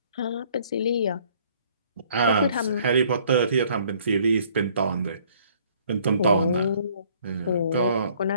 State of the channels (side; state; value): both; inverted; correlation -0.60